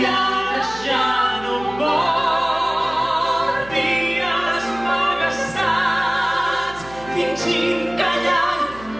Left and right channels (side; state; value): right; noise; hum, 19 dB below the sound